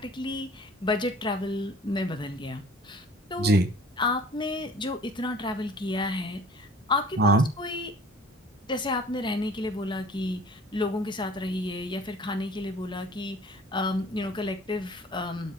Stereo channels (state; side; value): normal; both; correlation 0.48